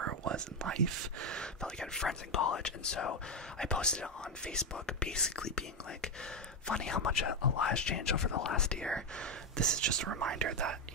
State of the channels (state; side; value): normal; both; correlation 0.06